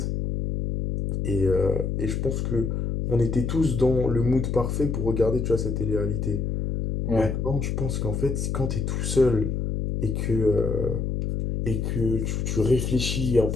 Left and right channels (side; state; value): left; noise; hum, 1 dB below the sound